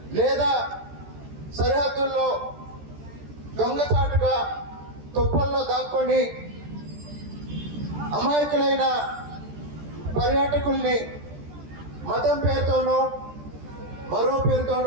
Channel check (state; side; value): late; left; 14 ms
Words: లేదా సరిహద్దుల్లో దొంగచాటుగా తుప్పల్లో దాక్కొని అమాయకులైన పర్యాటకుల్ని మతం పేరుతోనో మరో